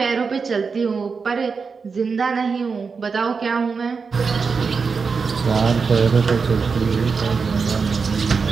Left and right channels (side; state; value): left; quieter; 5.1 dB